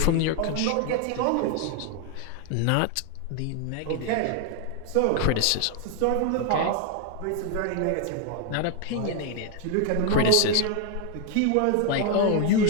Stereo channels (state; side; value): different; both; correlation 0.01